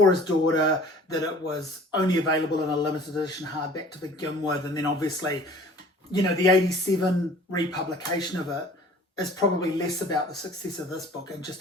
his daughter, that it was only available in a limited edition hardback to begin with, and then obviously, you know, the 87 republication of it is probably less about the success of this book and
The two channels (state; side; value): normal; both; correlation 0.49